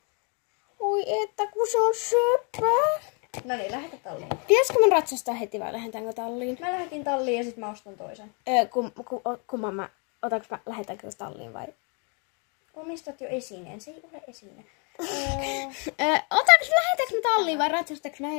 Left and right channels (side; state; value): right; quieter; 36.2 dB